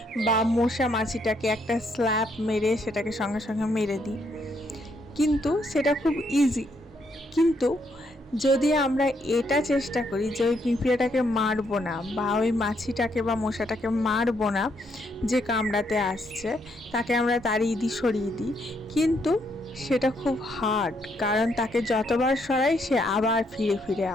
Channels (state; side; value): normal; both; correlation 0.74